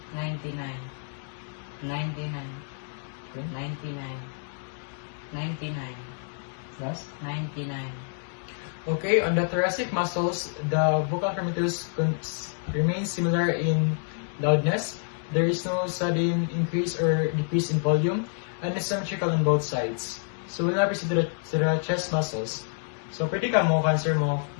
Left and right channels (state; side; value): silent; right; digital silence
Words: 99. 99. Okay. 99. 99. Last? 99. Okay, on the thoracic muscles, the vocal firmitus remains similar in loudness. There is no sudden increase or decrease in volume, and is symmetrical on both sides. So we'll now proceed to the chest muscles. So pwede ka mo, cancer mo